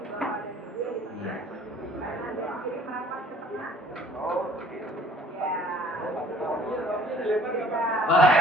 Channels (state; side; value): normal; both; correlation 0.53